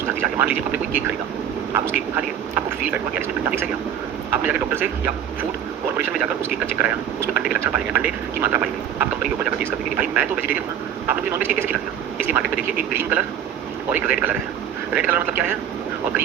जा रही है। मान लीजिए आपने कोई केक खरीदा, आप उस केक को खा लिए, आपको फील बैठ हुआ कि इसमें अंडा मिक्स है क्या? आपने जाकर डॉक्टर से या फूड कॉर्पोरेशन में जाकर उस केक का चेक कराया, उसमें अंडे के लक्षण पाए गए, अंडे की मात्रा पाई गई। आप कंपनी के ऊपर जाकर केस करेंगे कि भाई मैं तो वेजिटेरियन हूं, आपने मुझे नॉनवेज केक कैसे खिला दिया? इसलिए मार्केट में देखिए एक ग्रीन कलर और एक रेड कलर है। रेड कलर मतलब क्या है और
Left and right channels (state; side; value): quieter; left; 9.4 dB